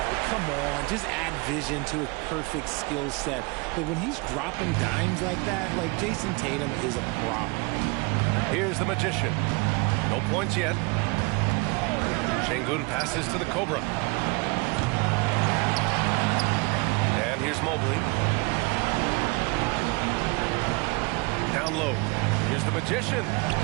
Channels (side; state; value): left; quieter; 28.2 dB